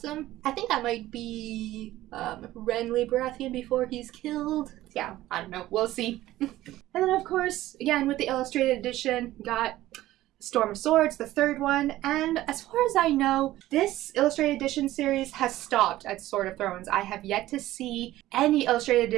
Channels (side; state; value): left; quieter; 15.5 dB